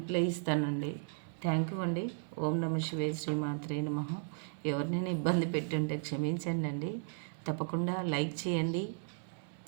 ఇస్తానండి. థ్యాంక్ యూ అండి. ఓం నమ శివాయ, శ్రీమాత్రే నమః. ఎవరినైనా ఇబ్బంది పెట్టుంటే క్షమించండి అండి. తప్పకుండా లైక్ చేయండి,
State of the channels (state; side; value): silent; left; digital silence